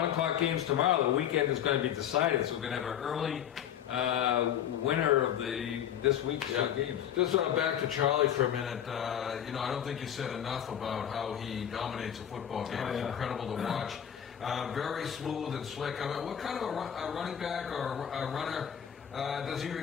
o'clock games tomorrow, the weekend is going to be decided. So we're going to have an early winner of this week's games. Just back to Charlie for a minute. You know, I don't think you said enough about how he dominates a football game. Oh, It's yeah. incredible to watch. Very smooth and slick. I mean, what kind of a running back or a runner does he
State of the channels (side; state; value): right; quieter; 9.7 dB